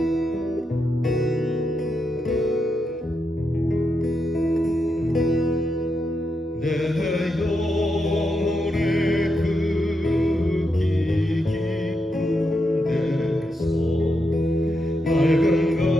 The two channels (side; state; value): both; normal; correlation 0.84